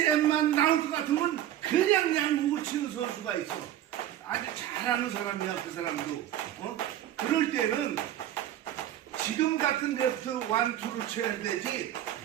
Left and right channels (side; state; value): left; quieter; 12.2 dB